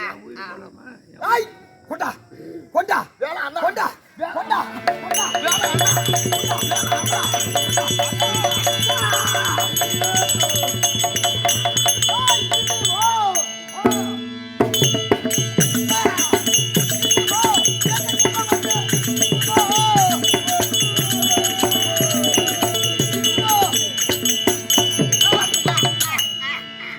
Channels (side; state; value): both; identical; correlation 1.00